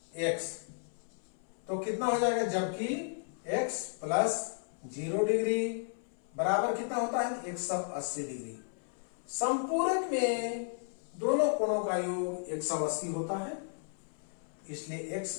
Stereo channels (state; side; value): silent; right; 55 dB below the other